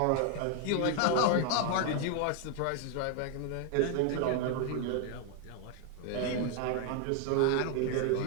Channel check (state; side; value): different; both; correlation 0.00